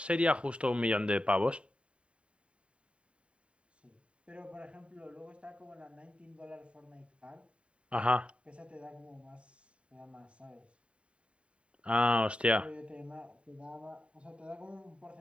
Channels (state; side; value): late; left; 0.059 ms